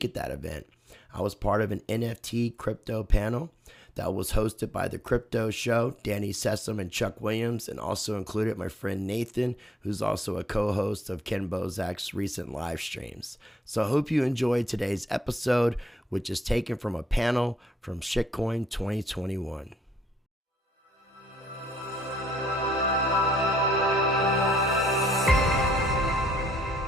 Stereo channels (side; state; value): both; normal; correlation 0.72